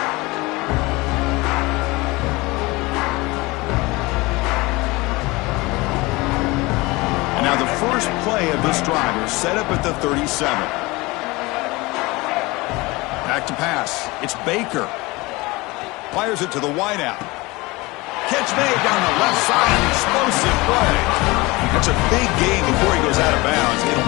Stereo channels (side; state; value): right; quieter; 22.8 dB